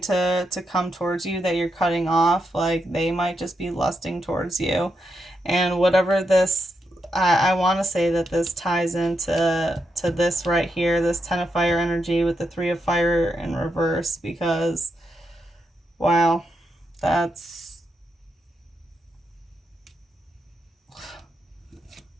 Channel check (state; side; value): normal; both; correlation 0.83